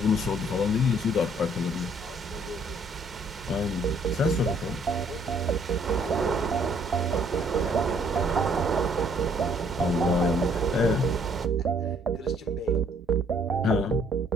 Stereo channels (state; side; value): normal; both; correlation 0.63